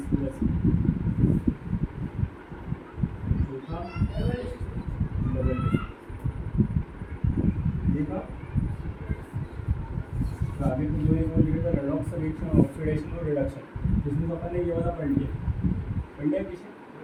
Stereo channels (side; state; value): both; identical; correlation 1.00